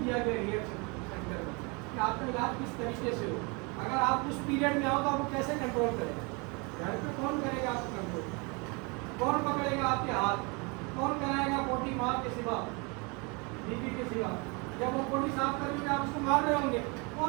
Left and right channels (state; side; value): quieter; left; 30.3 dB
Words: دیا گیا ریئیکٹ سینٹر میں کہ آپ کا علاج کس طریقے سے ہو. اگر آپ اس پیریڈ میں آؤ تو آپ کو کیسے کنٹرول کریں؟ گھر پہ کون کرے گا آپ کو کنٹرول؟ کون پکڑے گا آپ کے ہاتھ؟ کون کرائے گا پوٹی ماں کے سوا, بیوی کے سوا؟ جب وہ پوٹی صاف کریں گے آپ اس کو مار رہے ہوں گے,